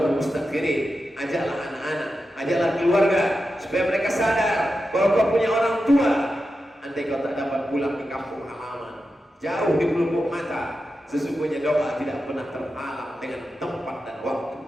mustakhirin. Ajaklah anak-anak, ajaklah keluarga supaya mereka sadar bahwa kau punya orang tua. Andai kau tak dapat pulang di kampung halaman, jauh di pelupuk mata, sesungguhnya doa tidak pernah terhalang dengan tempat dan waktu.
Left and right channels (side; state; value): both; normal; correlation 0.90